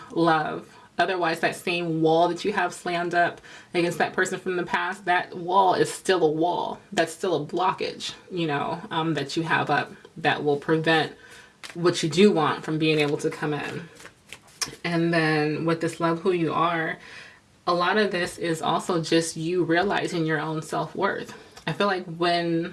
love. Otherwise, that same wall that you have slammed up against that person from the past, that wall is still a wall. That's still a blockage, you know, that you have up that will prevent what you do want from being able to come in. And then with this love who you are, a lot of this is also just you realizing your own self-worth. I feel like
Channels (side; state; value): both; identical; correlation 1.00